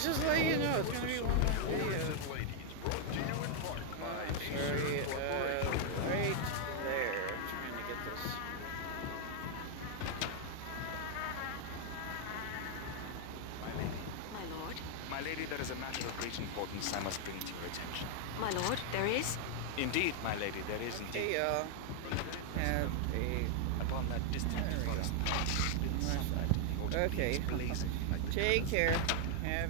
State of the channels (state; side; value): different; both; correlation 0.00